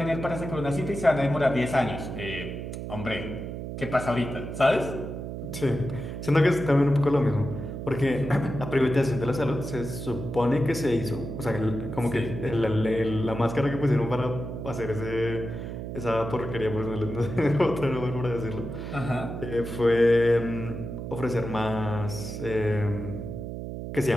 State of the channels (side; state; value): right; noise; hum, 7 dB below the sound